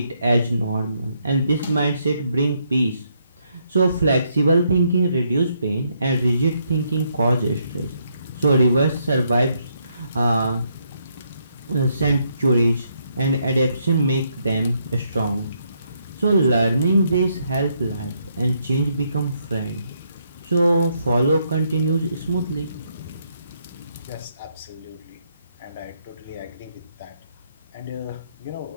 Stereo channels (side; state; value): both; inverted; correlation -0.75